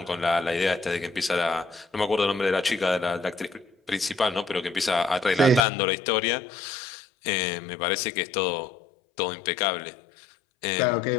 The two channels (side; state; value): right; drops out; at 5.7 s